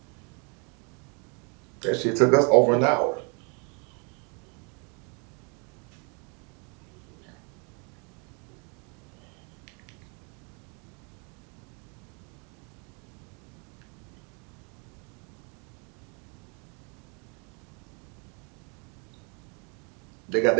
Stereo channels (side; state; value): left; quieter; 35.2 dB